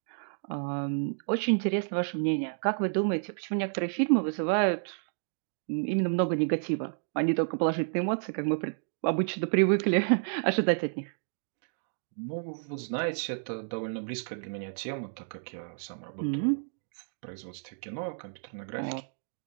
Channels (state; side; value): silent; left; digital silence